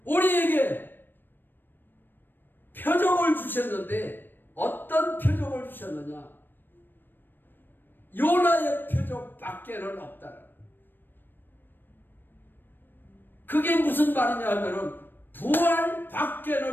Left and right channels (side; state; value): right; late; 0.094 ms